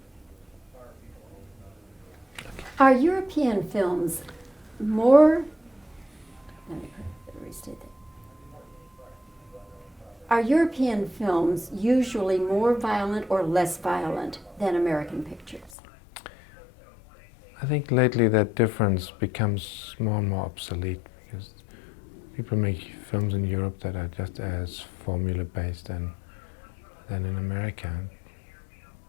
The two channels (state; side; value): drops out; right; at 15.7 s